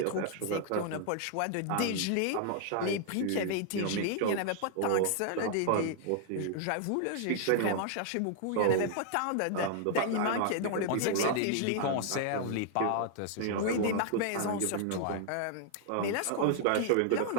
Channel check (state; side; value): different; both; correlation 0.00